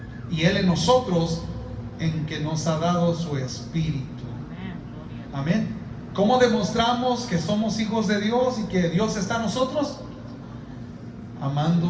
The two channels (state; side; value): identical; both; correlation 1.00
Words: y Él en nosotros, en que nos ha dado su Espíritu. Amén. ¿Cómo demostramos que somos hijos de Dios y que Dios está en nosotros?